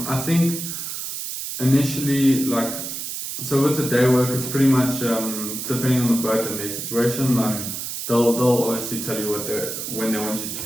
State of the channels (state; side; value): noise; right; hiss, 6 dB below the sound